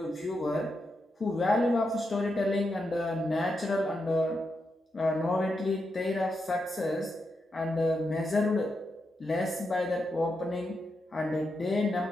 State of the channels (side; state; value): both; normal; correlation 0.85